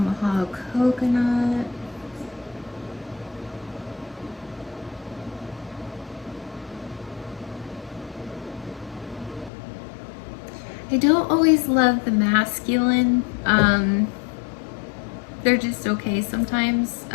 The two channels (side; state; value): right; drops out; at 9.5 s